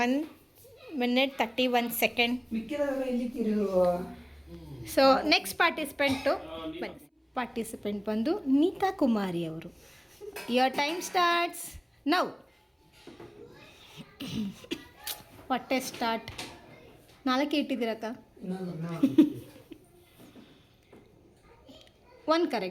1 minute 31 seconds. ಮಿಕ್ಕಿದವರೆಲ್ಲ ಎಲ್ಲಿದ್ದೀರಿ? ಸೊ ನೆಕ್ಸ್ಟ್ ಪಾರ್ಟಿಸಿಪೆಂಟ್ ಬಂದು ನೀತಾ ಕುಮಾರಿ ಅವರು. Your time starts now. ಹೊಟ್ಟೆ ಸ್ಟಾರ್ಟ್. 4 ಇಟ್ಟಿದ್ದೀರಕ್ಕ. One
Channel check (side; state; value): both; identical; correlation 1.00